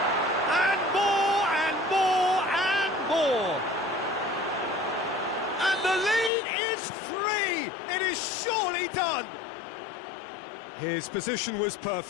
And more, and more, and more! And the lead is 3! It is surely done! His position was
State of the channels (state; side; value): drops out; right; at 6.3 s